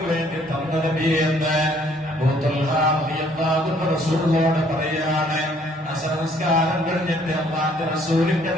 വേണ്ടി തന്ന നബിയെന്ന് അബൂ തൽഹാ റളിയല്ലാഹു അൻഹു റസൂലിനോട് പറയാണ്. സംസ്കാരം കഴിഞ്ഞിട്ട് അല്ലാഹുവിന്റെ റസൂലിന്റെ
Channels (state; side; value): normal; both; correlation 0.62